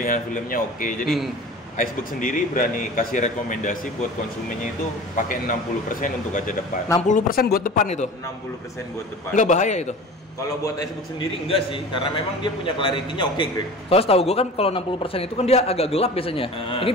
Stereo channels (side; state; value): both; normal; correlation 0.38